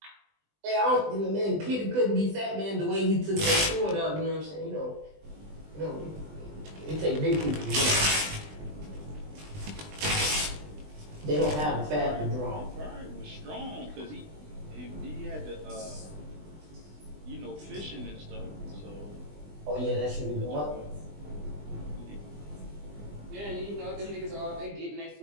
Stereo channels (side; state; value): left; late; 20 ms